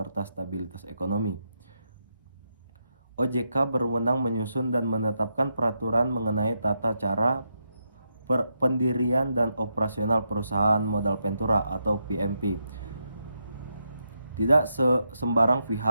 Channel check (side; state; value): both; inverted; correlation -0.83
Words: stabilitas ekonomi. OJK berwenang menyusun dan menetapkan peraturan mengenai tata cara pendirian dan operasional perusahaan modal ventura atau PMP. Tidak sembarang